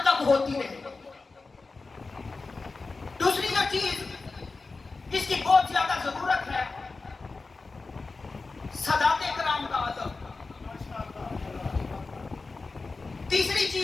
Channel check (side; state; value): right; quieter; 3.9 dB